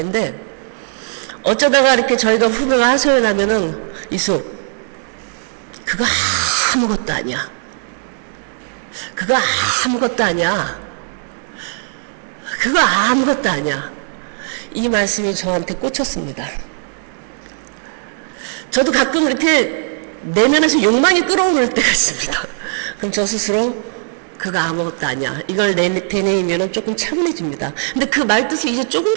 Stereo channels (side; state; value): left; silent; 64 dB below the other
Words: 근데 어쩌다가 이렇게 저희가 후배가 하소연 하면은 이수 그거 아무것도 아니야. 그거 아무것도 아니야. 그거 아무것도 아니야. 이 말씀이 저한테 꽂혔습니다. 저도 가끔 이렇게 내면에서 욕망이 끓어오를 때가 있습니다. 그럼 저 스스로 그거 아무것도 아니야. 이걸 되뇌이면 조금 차분해집니다. 근데 그 말뜻을 이제